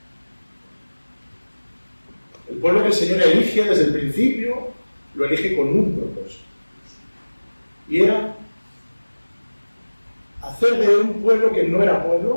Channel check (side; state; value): both; inverted; correlation -1.00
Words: El pueblo que el Señor elige desde el principio, lo elige con un propósito. Y era hacer de un pueblo que no era